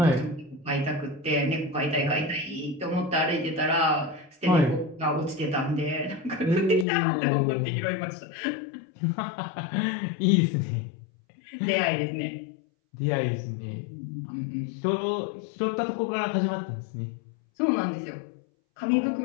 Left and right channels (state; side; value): drops out; right; at 6.9 s